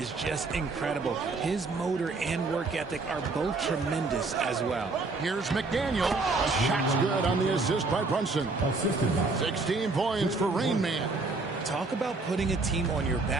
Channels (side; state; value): left; quieter; 3.6 dB